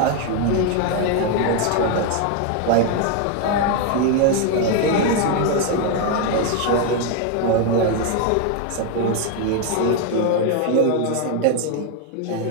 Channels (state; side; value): different; both; correlation 0.01